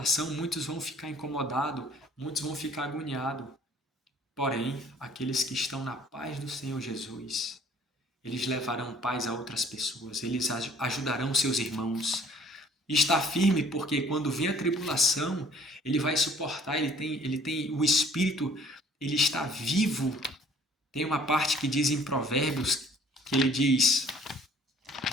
muitos vão ficar incomodados, muitos vão ficar agoniados. Porém, aqueles que estão na paz do Senhor Jesus, eles levarão paz a outras pessoas, eles ajudarão seus irmãos. Está firme porque quando vem a tribulação, ele vai suportar, ele tem o Espírito, ele está vivo. Tem uma parte que diz em Provérbios, que ele diz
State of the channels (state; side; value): normal; both; correlation 0.56